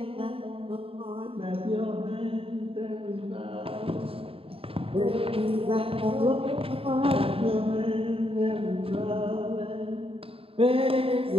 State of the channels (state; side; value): late; left; 0.27 ms